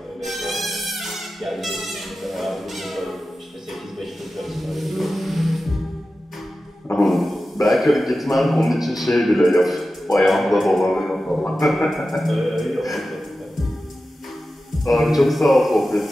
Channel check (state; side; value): normal; both; correlation 0.93